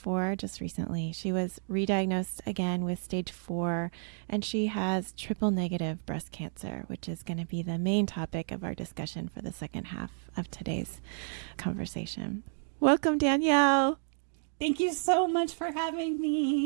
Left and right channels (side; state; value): left; silent; digital silence